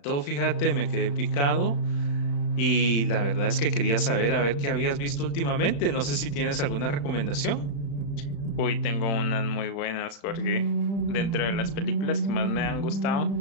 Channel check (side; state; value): right; late; 35 ms